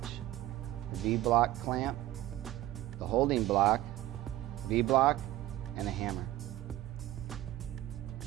the V-block clamp, the holding block, V-block, and a hammer.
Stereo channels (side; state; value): left; quieter; 15.3 dB